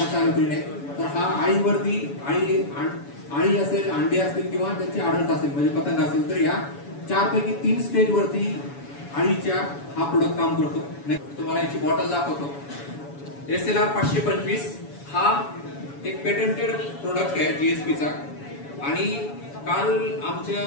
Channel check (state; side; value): late; right; 7.1 ms